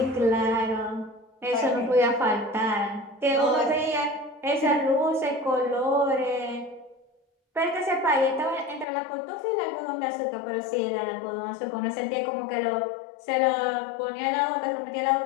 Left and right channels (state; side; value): drops out; right; at 8.8 s